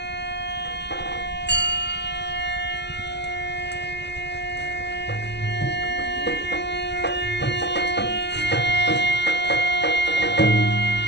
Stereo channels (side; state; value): right; late; 0.50 ms